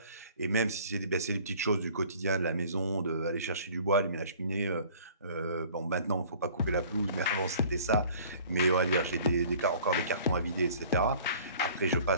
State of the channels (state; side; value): inverted; both; correlation -0.50